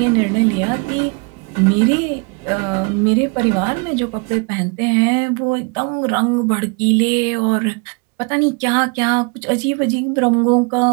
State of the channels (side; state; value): left; quieter; 32.9 dB